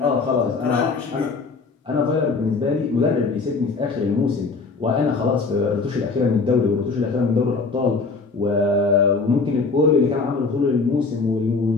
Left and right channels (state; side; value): quieter; right; 4.3 dB